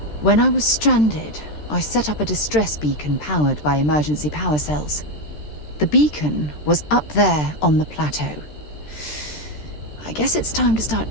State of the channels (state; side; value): late; right; 13 ms